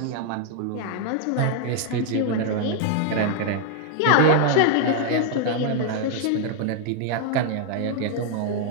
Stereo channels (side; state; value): both; different; correlation 0.00